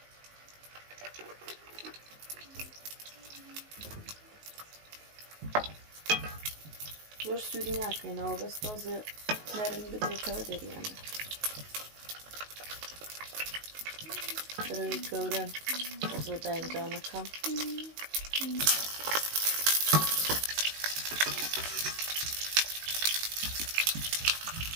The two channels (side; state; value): left; late; 19 ms